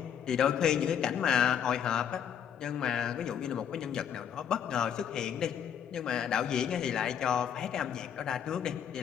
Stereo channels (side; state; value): right; quieter; 8.6 dB